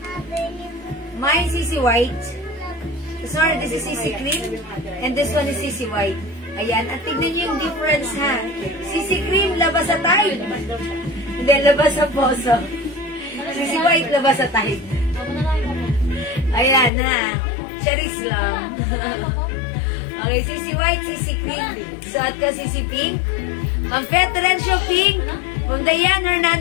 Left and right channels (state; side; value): drops out; right; at 16.9 s